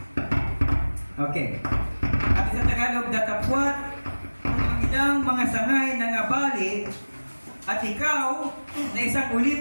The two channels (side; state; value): both; inverted; correlation -1.00